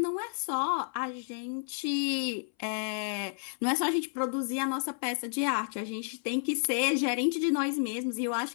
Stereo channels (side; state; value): right; silent; 57 dB below the other